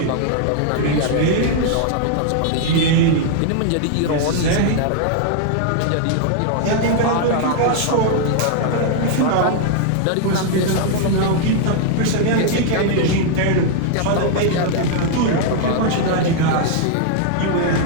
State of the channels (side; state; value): both; different; correlation 0.00